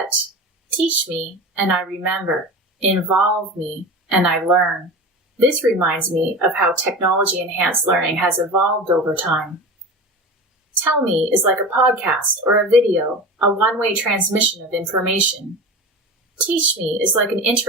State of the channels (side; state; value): both; normal; correlation 0.30